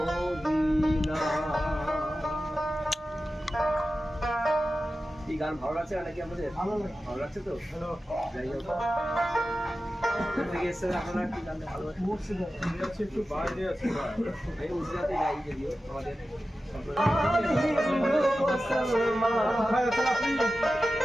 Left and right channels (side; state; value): both; normal; correlation 0.94